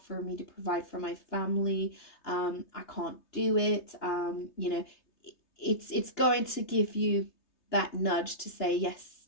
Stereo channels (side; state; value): right; late; 3.3 ms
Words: for me to provide for my family. I can't do it. You know, it's going to give you that nudge to say, yes,